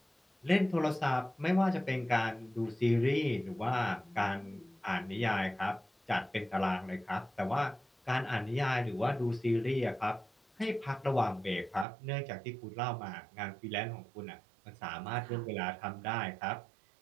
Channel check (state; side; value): drops out; left; at 11.9 s